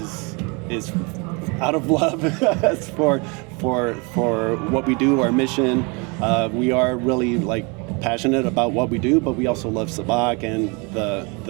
out of love for what we do, our mission. We are really like passionate about what we do, but we also love Sabacc and the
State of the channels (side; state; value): left; quieter; 30.6 dB